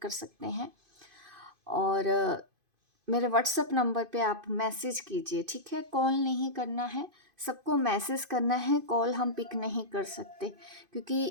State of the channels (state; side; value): late; left; 2.5 ms